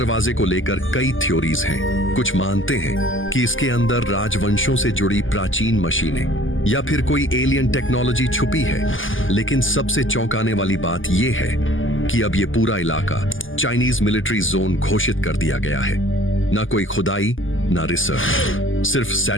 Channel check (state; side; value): late; right; 0.58 ms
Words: को लेकर कई थ्योरीज हैं। कुछ मानते हैं कि इसके अंदर राजवंशों से जुड़ी प्राचीन मशीनें या फिर कोई एलियन टेक्नोलॉजी छुपी है। लेकिन सबसे चौंकाने वाली बात यह है कि अब ये पूरा इलाका चाइनीज मिलिट्री जोन घोषित कर दिया गया है। ना कोई खुदाई ना रिसर्च, सिर्फ